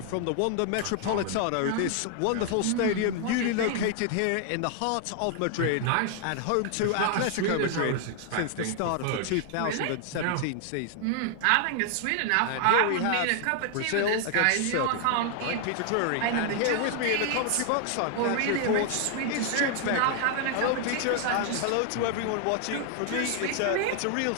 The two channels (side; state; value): both; different; correlation 0.00